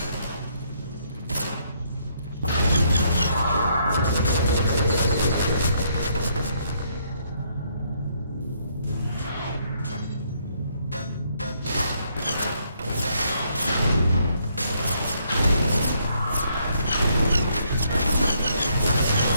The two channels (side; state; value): both; inverted; correlation -0.71